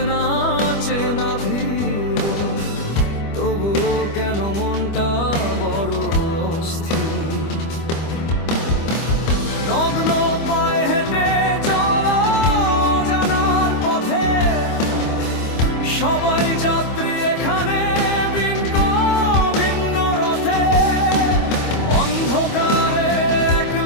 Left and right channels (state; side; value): late; right; 25 ms